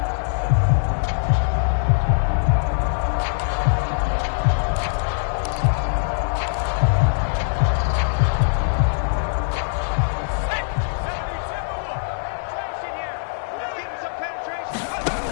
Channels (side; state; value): right; silent; 56 dB below the other